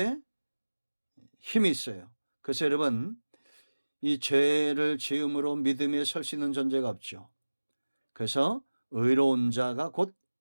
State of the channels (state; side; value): inverted; both; correlation -1.00